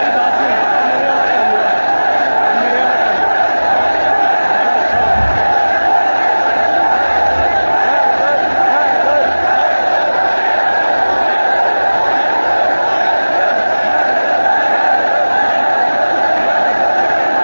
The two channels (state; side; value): inverted; both; correlation -1.00